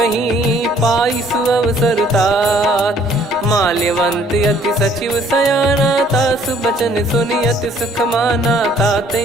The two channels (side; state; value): both; normal; correlation 0.60